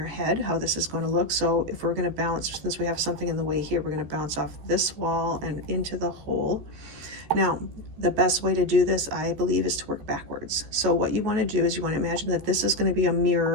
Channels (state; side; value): late; left; 14 ms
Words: head, how this is going to look. So if we're going to bounce, since we have something in the way here, we're going to bounce off this wall and into the hole. Now, the best way to do this, I believe, is to work backwards. So what you want to do is you want to imagine that this is going to be a